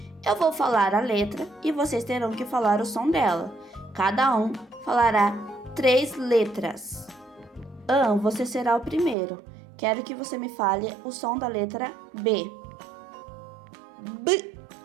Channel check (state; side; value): drops out; left; at 9.2 s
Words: Eu vou falar a letra e vocês terão que falar o som dela. Cada um falará 3 letras. Você será o primeiro. Quero que você me fale o som da letra B.